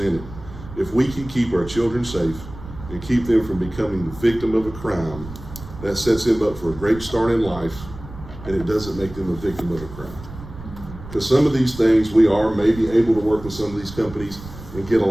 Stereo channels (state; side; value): noise; right; rumble, 14 dB below the sound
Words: it. If we can keep our children safe and keep them from becoming the victim of a crime, that sets them up for a great start in life, and it doesn't make them a victim of a crime. Because some of these things, we are maybe able to work with some of these companies and get a